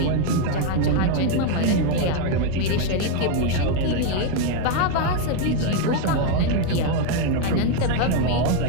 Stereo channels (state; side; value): different; both; correlation 0.01